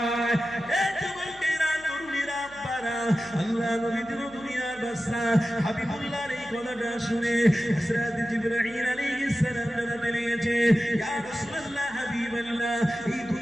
এ যুবকেরা, তরুণীরা, আব্বারা, আল্লাহ নবী দুনিয়ার বাদশা হাবিবুল্লাহর এই কথাটা শুনে হযরত জিবরাইল আলাইহিস সালাম জানাতে লেগেছে, ইয়া রাসূলুল্লাহ, হাবিবাল্লাহ, এই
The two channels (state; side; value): noise; left; hum, 24 dB below the sound